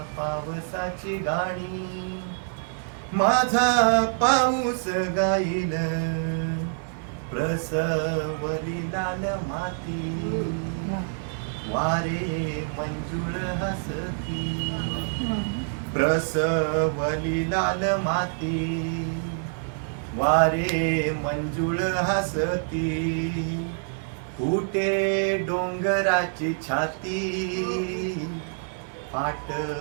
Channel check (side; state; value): left; silent; 56 dB below the other